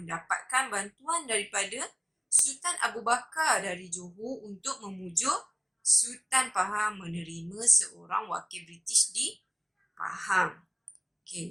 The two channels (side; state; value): both; identical; correlation 1.00